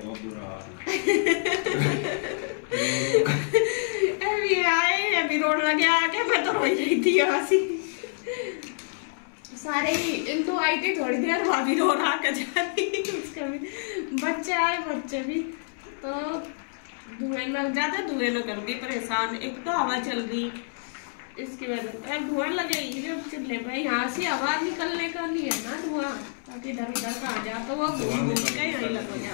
बुरा हाल। अभी आए अभी रोड लगे आके मैं तो रो रही थी हंसी। सारे ही तो आई थी थोड़ी देर, भाभी रो रहा कर जा रही, उसका भी बच्चे आए, बच्चे भी तो धुएं लग जाते, धुएं न कर दी परेशान। एक तो हवा चल रही इसकी वजह से धुआं लगेगी जब चूल्हे पे, यहाँ से हवा निकलने का लिए ना धुआं, ताकि इधर उधर का आ जाए तो वो घूम के यही लग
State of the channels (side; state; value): right; silent; 60 dB below the other